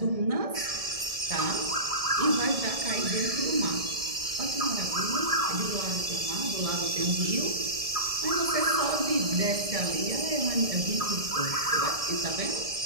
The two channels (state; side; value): late; left; 1.6 ms